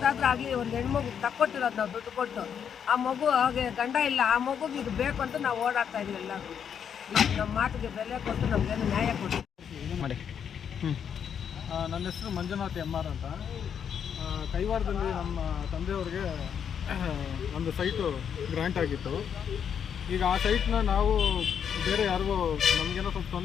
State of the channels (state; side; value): quieter; right; 7.9 dB